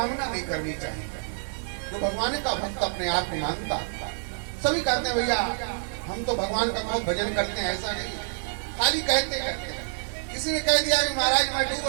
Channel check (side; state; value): left; silent; digital silence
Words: नहीं करनी चाहिए। जो भगवान का भक्त अपने आप को मानता, सभी कहते हैं भैया हम तो भगवान का बहुत भजन करते हैं, ऐसा नहीं, खाली कहते करते हैं। किसी ने कह दिया कि महाराज मैं डूब